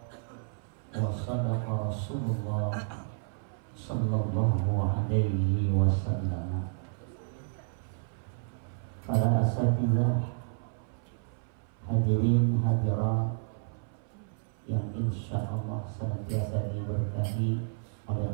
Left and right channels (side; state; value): left; silent; 57 dB below the other